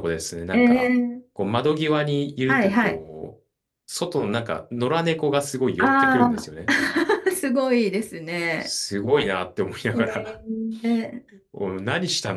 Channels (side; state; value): both; identical; correlation 1.00